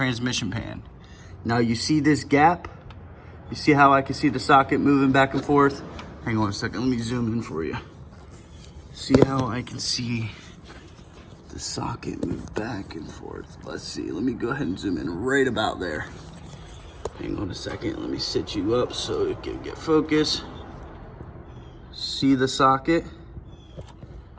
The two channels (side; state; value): both; identical; correlation 1.00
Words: pan. Now you see this gap? You see how I can see the socket moving back and forth? Hang on a second, let me zoom in for you. See how I can see the socket move back and forth? Let's see, let me go ahead and zoom in right about there. Hang on a second, let me sit you up so it can get focus. See the socket?